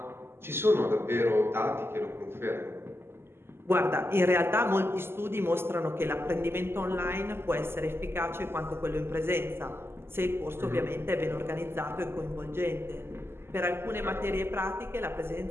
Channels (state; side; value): late; left; 0.12 ms